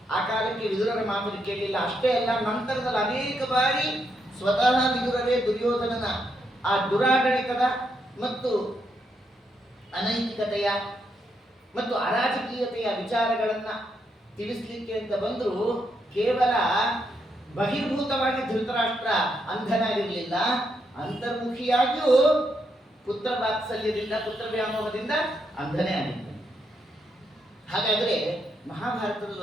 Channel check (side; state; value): both; normal; correlation 0.79